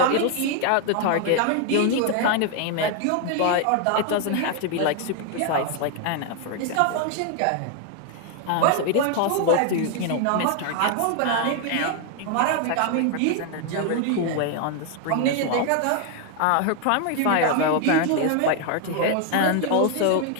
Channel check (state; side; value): different; both; correlation 0.00